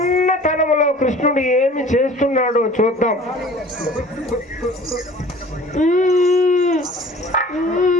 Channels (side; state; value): both; normal; correlation 0.46